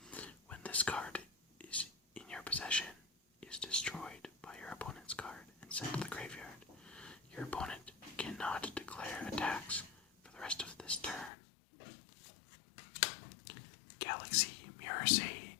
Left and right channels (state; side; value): drops out; right; at 11.3 s